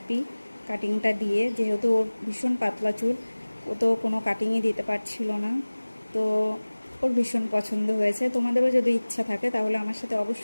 কাটিংটা দিয়ে, যেহেতু ওর ভীষণ পাতলা চুল, ও তো কোনো কাটিংই দিতে পারছিল না। তো ওর ভীষণ পছন্দ হয়েছে। তোমাদেরও যদি ইচ্ছা থাকে তাহলে আমার সাথে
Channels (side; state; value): both; inverted; correlation -1.00